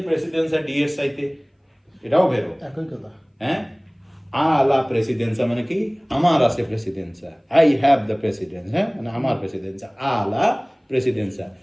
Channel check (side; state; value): both; identical; correlation 1.00